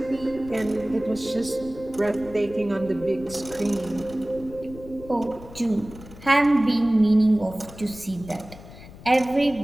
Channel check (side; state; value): left; noise; rumble, 17 dB below the sound